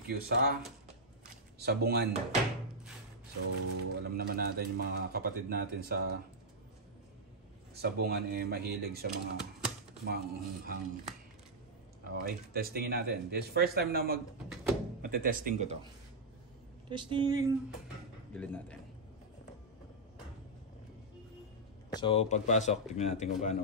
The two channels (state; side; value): normal; both; correlation -0.06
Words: sa Sabungan. So, alam naman natin yung mga kapatid natin sa Sabungan mahilig sa mga maanghang. Okay, testingin natin. This first time na matetesting ko to. Testing. Gilid natin. So, pagpasok, tignan natin kung paano.